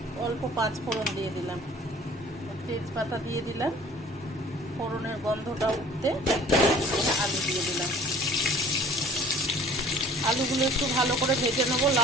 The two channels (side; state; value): both; normal; correlation 0.51